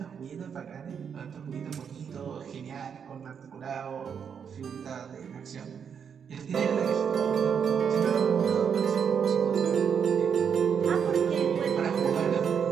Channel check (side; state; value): left; quieter; 7.2 dB